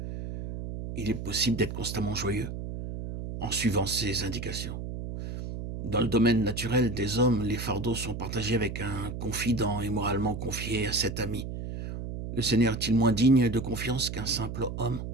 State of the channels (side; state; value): right; noise; hum, 7 dB below the sound